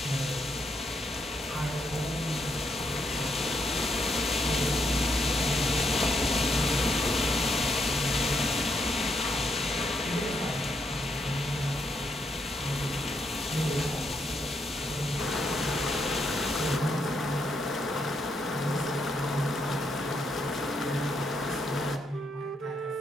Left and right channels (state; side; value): normal; both; correlation 0.78